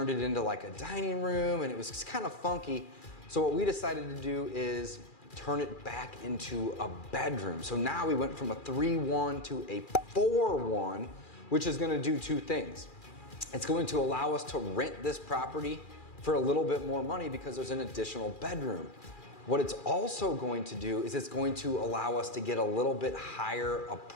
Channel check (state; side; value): late; right; 2.4 ms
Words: it into like a dining room, and it was just kind of funky. So what we decided to do is turn it back into a bedroom. So now we went from a 3-1 to a 4-1, which is going to do two things. It's going to allow us to rent this property for a little bit more money because there's an additional bedroom. What it's also going to do is it's going to allow us to get a little bit higher